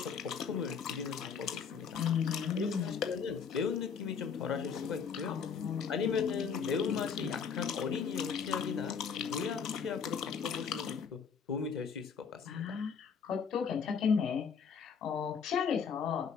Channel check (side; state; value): right; quieter; 6.4 dB